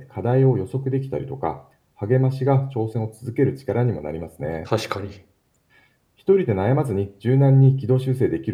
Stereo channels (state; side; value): identical; both; correlation 1.00